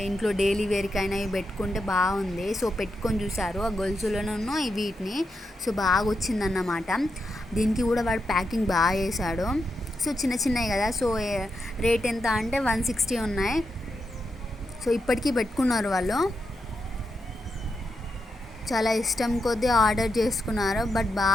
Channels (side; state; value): both; normal; correlation 0.85